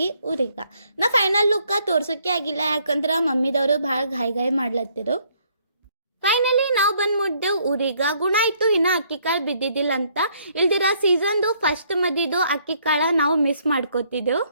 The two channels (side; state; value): both; inverted; correlation -0.67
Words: ಊರಿಗೆ. ನಾ ಫೈನಲ್ ಲುಕ್ಕ ತೋರ್ಸೋಕೆ ಆಗಿಲ್ಲ, ಯಾಕಂದ್ರೆ ಮಮ್ಮಿದವರು ಭಾಳ ಗಾಯಿ ಮಾಡ್ಲತ್ತಿರು. ಫೈನಲಿ ನಾವು ಬಂದು ಮುಟ್ಟಿದೆವು ಊರಿಗೆ. ಗುಣ ಆಯಿತು ಇನ್ನು ಅಕ್ಕಿ ಕಾಳು ಬಿದ್ದಿದ್ದಿಲ್ಲ ಅಂತ. ಇಲ್ದಿರ ಸೀಸನ್ದು ಫಸ್ಟ್ ಮದಿದು ಅಕ್ಕಿ ಕಾಳು ನಾವು ಮಿಸ್ ಮಾಡ್ಕೋತಿದ್ದೆವು.